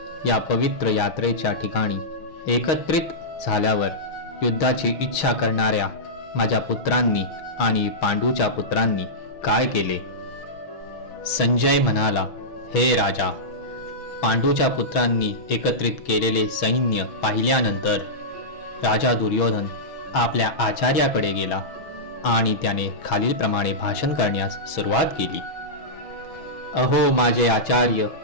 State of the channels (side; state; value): right; late; 6.2 ms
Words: या पवित्र यात्रेच्या ठिकाणी एकत्रित झाल्यावर युद्धाची इच्छा करणाऱ्या माझ्या पुत्रांनी आणि पांडूच्या पुत्रांनी काय केले? संजय म्हणाला, हे राजा, पांडूच्या पुत्रांनी एकत्रित केलेले सैन्य पाहिल्यानंतर राजा दुर्योधन आपल्या आचार्याकडे गेला आणि त्याने खालीलप्रमाणे भाषण करण्यास सुरुवात केली. अहो माझे आचार्य,